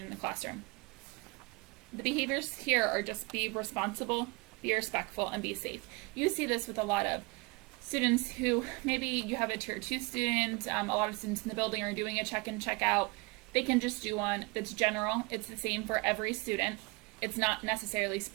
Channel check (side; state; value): left; quieter; 27.3 dB